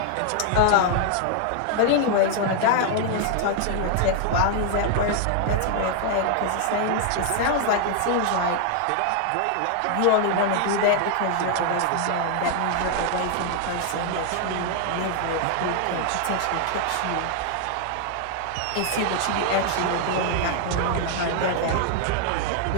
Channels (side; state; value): both; different; correlation 0.00